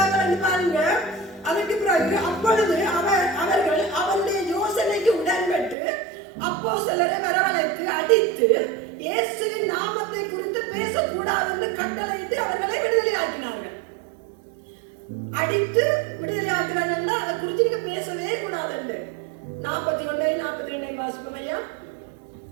என்று பாருங்க. அதற்கு பிறகு அப்பொழுது அவர்கள் அவருடைய யோசனைக்கு உடன்பட்டு அப்போஸ்தலரை வரவழைத்து அடித்து இயேசுவின் நாமத்தை குறித்து பேசக்கூடாது என்று கட்டளையிட்டு அவர்களை விடுதலையாக்கினார்கள். அடித்து விடுதலையாக்கிறார்கள். அதை குறித்து நீங்க பேசவே கூடாது என்று 41 42 வாசிப்போம் ஐயா.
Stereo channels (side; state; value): left; drops out; at 5.8 s